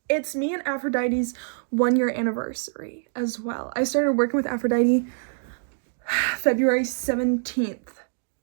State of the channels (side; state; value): left; silent; digital silence